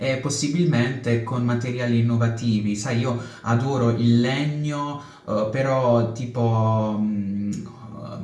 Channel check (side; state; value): both; identical; correlation 1.00